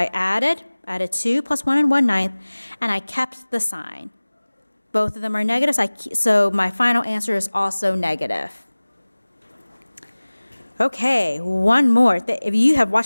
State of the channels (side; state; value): both; inverted; correlation -1.00